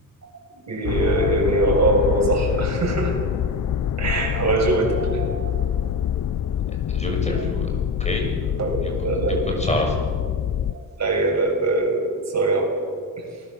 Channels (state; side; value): normal; both; correlation 0.18